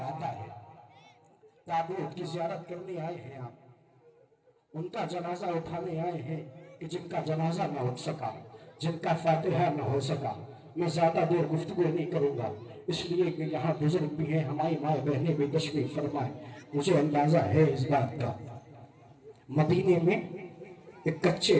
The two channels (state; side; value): identical; both; correlation 1.00